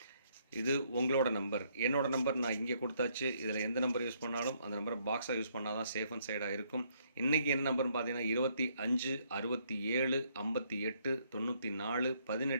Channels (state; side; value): inverted; both; correlation -0.70